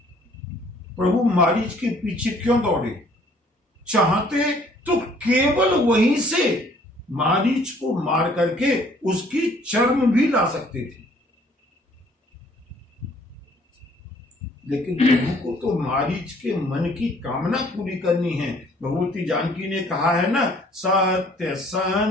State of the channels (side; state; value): both; normal; correlation 0.59